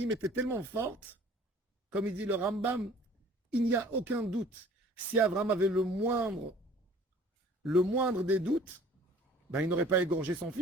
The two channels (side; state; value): both; normal; correlation 0.51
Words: était tellement forte, comme il dit le Rambam, il n'y a aucun doute. Si Abraham avait le moindre des doutes, ben, il n'aurait pas égorgé son